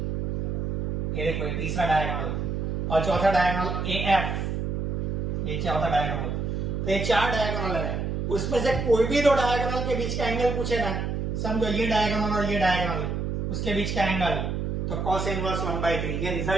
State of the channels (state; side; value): noise; right; hum, 1 dB below the sound